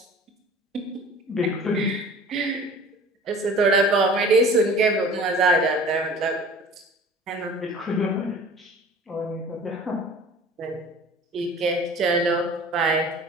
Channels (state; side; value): normal; both; correlation 0.44